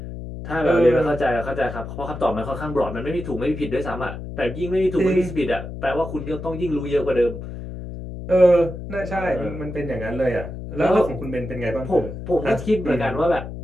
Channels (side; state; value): left; noise; hum, 9 dB below the sound